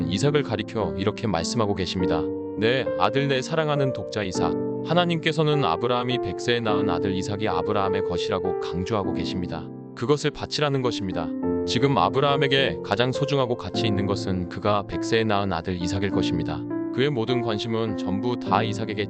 이삭을 가리켜 이렇게 말씀하고 계십니다. 내 아들 내 사랑하는 독자 이삭. 하나님께서는 아브라함이 100세에 낳은 아들 이삭이 아브라함의 것이라고 강조하고 계십니다. 그것을 바치라는 것입니다. 지금 아브라함에게 가장 소중하고 가치 있는 것은 그가 100세에 낳은 아들 이삭일 것입니다. 그의 모든 관심은 전부 다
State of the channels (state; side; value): identical; both; correlation 1.00